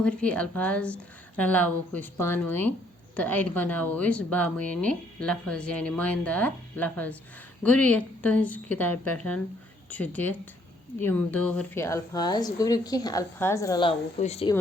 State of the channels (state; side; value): normal; both; correlation 0.66